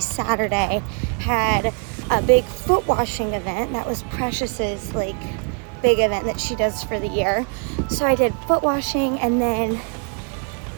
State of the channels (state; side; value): quieter; left; 37.9 dB